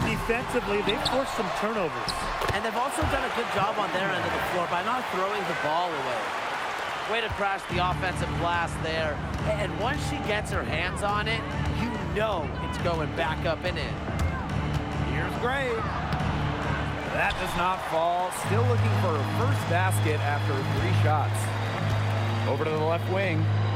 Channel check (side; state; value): both; identical; correlation 1.00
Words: defensively. They forced some turnovers. And they've also done a good job on their end of the floor by not throwing the ball away. Way to crash the offensive glass there. And once she gets her hands on it, you know it's going back up and in. Here's Gray. That does not fall. Still looking for her first basket after 3 shots. Over to the left wing.